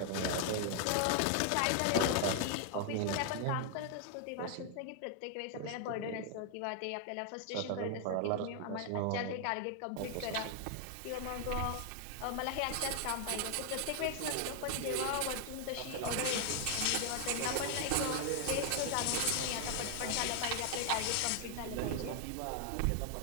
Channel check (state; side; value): different; both; correlation 0.00